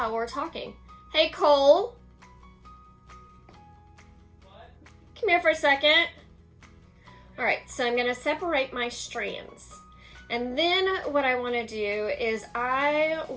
we're talking. Hey, Cole. What? Come here for a second. All right, so I'm going to separate my strands. And then what I want to do is I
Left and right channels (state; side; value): identical; both; correlation 1.00